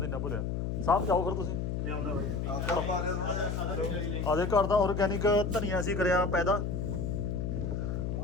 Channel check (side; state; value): left; noise; hum, 1 dB below the sound